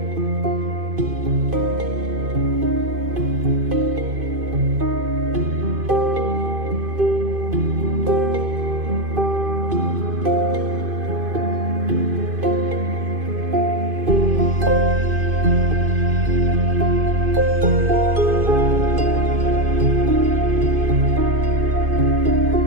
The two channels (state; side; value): late; left; 2.5 ms